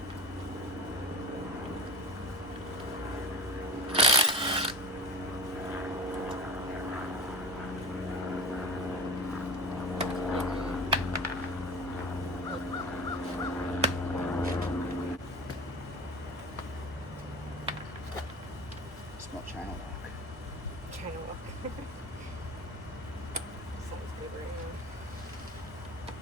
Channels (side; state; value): both; normal; correlation 0.32